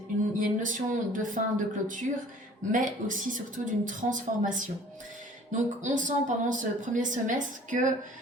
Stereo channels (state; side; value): normal; both; correlation 0.50